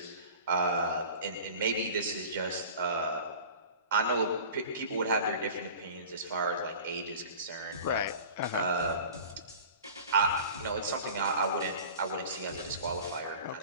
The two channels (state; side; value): inverted; both; correlation -0.40